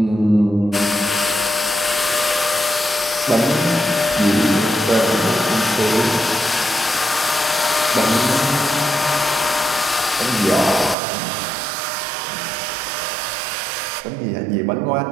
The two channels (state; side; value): drops out; left; at 11.0 s